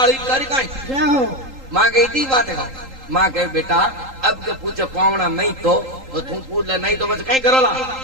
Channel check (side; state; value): left; late; 3.8 ms